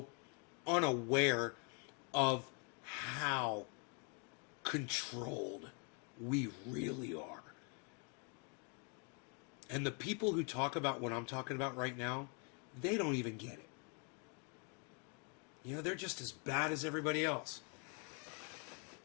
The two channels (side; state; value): right; quieter; 37.2 dB